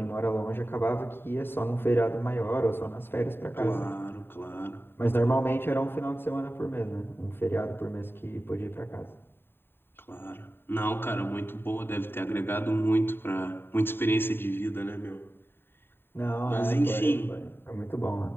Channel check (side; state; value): right; late; 0.11 ms